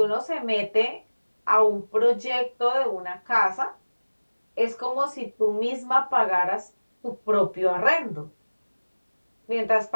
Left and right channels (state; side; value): inverted; both; correlation -1.00